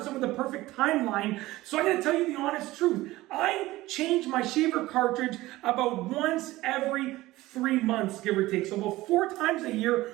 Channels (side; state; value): left; quieter; 17.9 dB